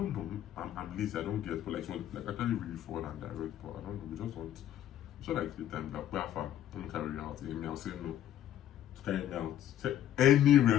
know. I'm lazy. I don't get. But like she was like actually really forward and direct. But I don't know. We just want. So like the time that where far let me carry you out. Me, I'll say no. Carry me out. Say any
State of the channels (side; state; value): right; quieter; 11.4 dB